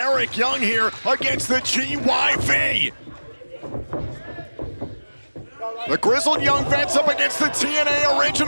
Young here against the GYV. The Grizzled Young Vets up against the TNA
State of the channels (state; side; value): inverted; both; correlation -1.00